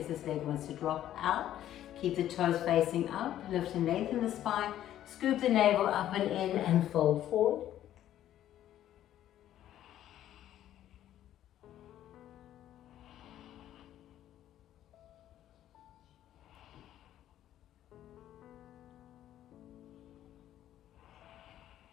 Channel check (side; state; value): right; quieter; 12.1 dB